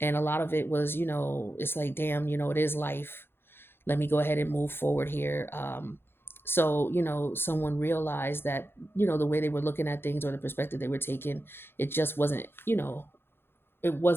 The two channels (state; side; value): late; right; 0.11 ms